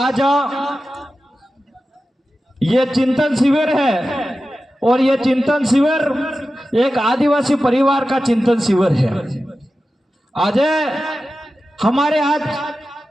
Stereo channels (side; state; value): both; normal; correlation 0.93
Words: ये चिंतन शिविर है और ये चिंतन शिविर एक आदिवासी परिवार का चिंतन शिविर है। आज